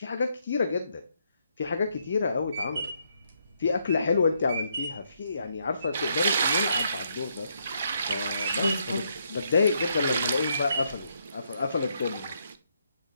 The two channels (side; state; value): both; inverted; correlation -0.75